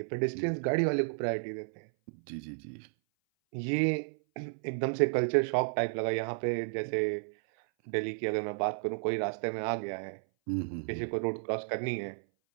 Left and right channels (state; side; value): silent; left; 56 dB below the other